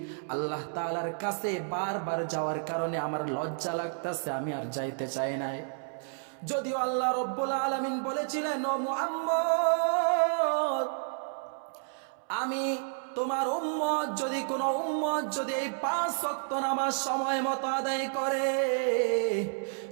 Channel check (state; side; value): silent; left; 57 dB below the other